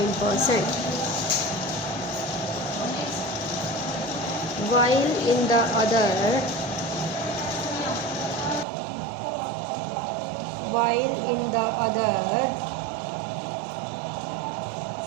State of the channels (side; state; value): left; drops out; at 8.7 s